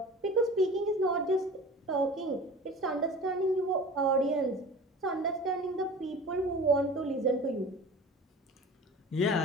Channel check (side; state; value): both; normal; correlation 0.39